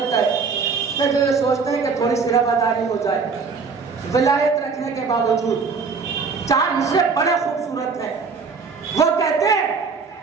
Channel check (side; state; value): left; quieter; 5.0 dB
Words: کہے کہ جو یہ سوچتے ہیں کہ تھوڑی سی رواداری ہو جائے ولایت رکھنے کے باوجود، 4 مصرے بڑے خوبصورت ہیں۔ وہ کہتے ہیں